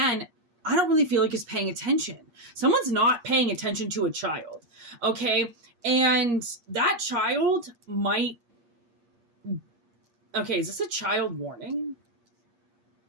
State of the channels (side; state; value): left; late; 8.5 ms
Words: I don't really feel like is paying attention. Someone's not paying attention to a child, okay? And that child might... Okay, is this a child warning?